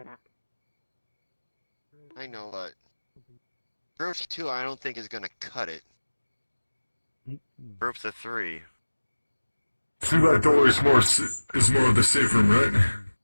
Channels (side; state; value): both; inverted; correlation -1.00